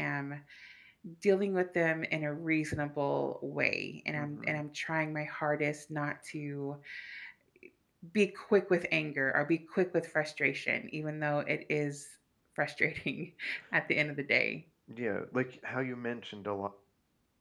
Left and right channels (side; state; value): both; identical; correlation 1.00